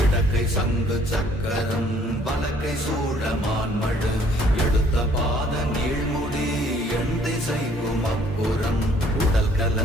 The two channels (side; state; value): both; normal; correlation 0.61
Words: இடக்கை சங்கு சக்கரம் வலக்கை சூழமான்மழு எடுத்த பாத நீழ்முடி எண் திசைக்கும் அப்புறம் உடல்